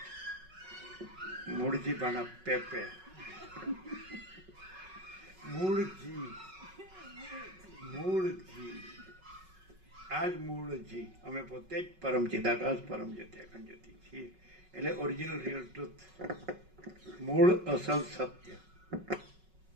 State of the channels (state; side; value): late; left; 5.4 ms